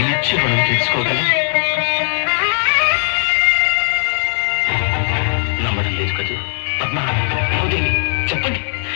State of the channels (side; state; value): right; silent; digital silence